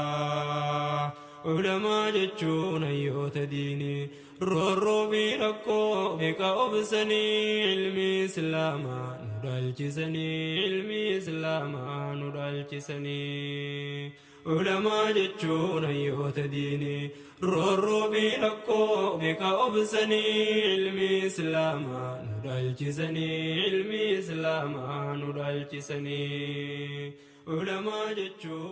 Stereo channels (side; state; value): both; identical; correlation 1.00